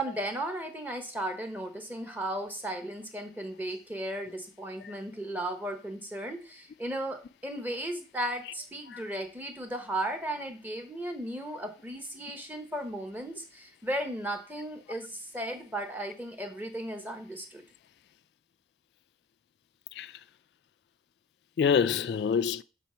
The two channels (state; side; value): normal; both; correlation 0.44